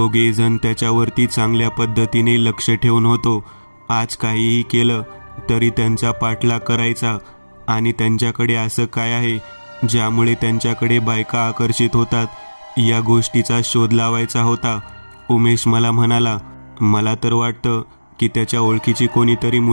जण त्याच्यावरती चांगल्या पद्धतीने लक्ष ठेवून होतो। आज काहीही केलं तरी त्यांचा पाठलाग करायचा आणि त्यांच्याकडे असं काय आहे ज्यामुळे त्यांच्याकडे बायका आकर्षित होतात या गोष्टीचा शोध लावायचा होता। उमेश मला म्हणाला, मला तर वाटतं की त्याच्या ओळखीची कोणीतरी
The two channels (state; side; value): inverted; both; correlation -1.00